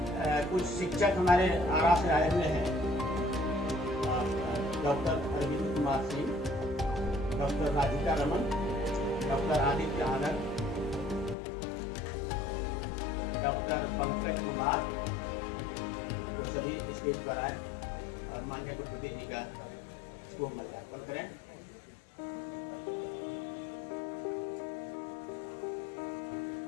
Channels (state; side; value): drops out; right; at 11.4 s